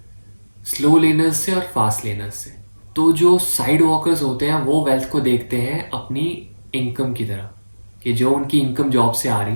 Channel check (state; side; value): inverted; both; correlation -1.00